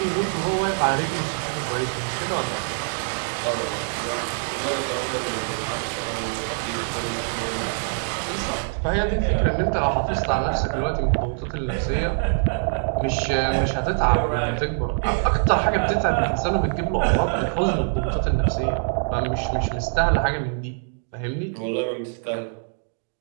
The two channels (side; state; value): left; silent; digital silence